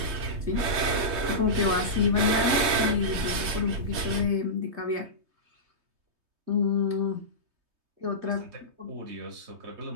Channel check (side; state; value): left; late; 3.2 ms